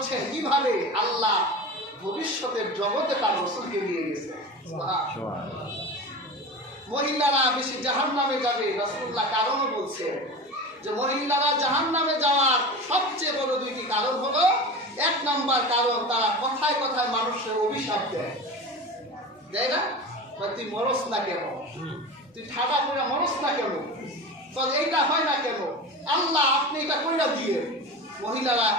কিভাবে? আল্লাহ ভবিষ্যতের জগতে তার রাসূলকে নিয়ে গেছে। সুবহানাল্লাহ। মহিলারা বেশি জাহান্নামে যাবে, রাসূলুল্লাহ কারণও বলছেন যে মহিলারা জাহান্নামে যাওয়ার সবচেয়ে বড় দুইটি কারণ হলো, এক নাম্বার কারণ তারা কথায় কথায় মানুষের অভিশাপ দেয়, দেয় না? তুই মরস না কেন, তুই ঠাডা করে মরস না কেন, তো এইটা হয় না কেন, আল্লাহ আপনি এটা কইরা দিয়ে। মহিলারা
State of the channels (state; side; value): normal; both; correlation 0.30